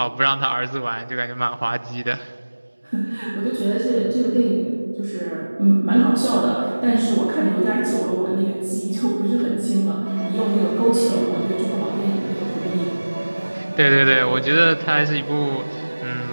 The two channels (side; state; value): both; inverted; correlation -1.00